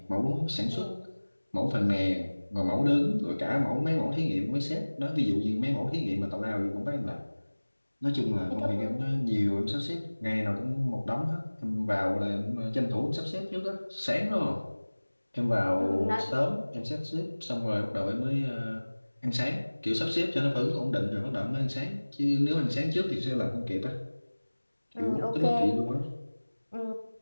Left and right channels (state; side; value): inverted; both; correlation -1.00